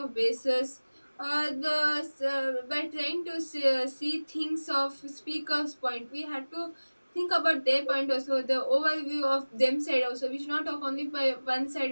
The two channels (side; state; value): both; inverted; correlation -1.00